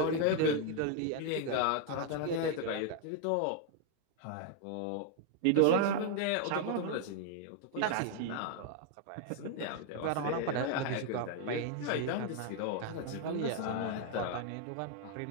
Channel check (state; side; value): different; both; correlation 0.00